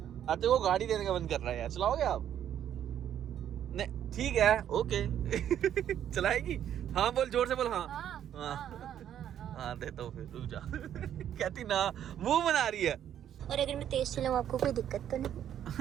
आते को गाड़ी देने का मन कर रहा है यार, चलाओगे आप। नहीं ठीक है ओके। चलाएगी, हाँ बोल, जोर से बोल। हाँ हाँ देता हूँ, फिर रुक जा। कहती ना, मुंह बना रही है। और अगर मैं तेज चलाऊं आपको कोई दिक्कत तो नहीं।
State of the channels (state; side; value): quieter; left; 10.2 dB